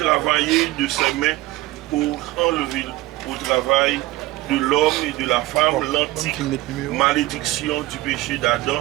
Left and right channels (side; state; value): left; quieter; 18.2 dB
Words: de ses mains pour enlever au travail de l'homme et de la femme l'antique malédiction du péché